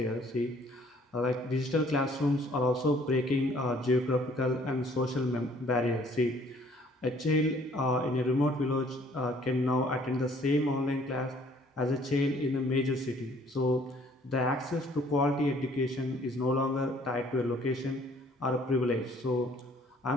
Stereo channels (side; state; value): both; normal; correlation 0.59